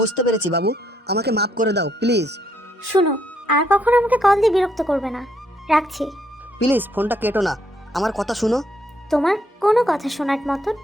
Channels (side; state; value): both; normal; correlation 0.73